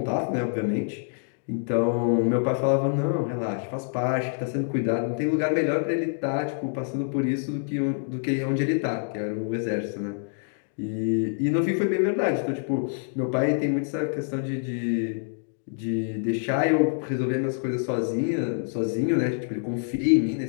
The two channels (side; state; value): right; silent; digital silence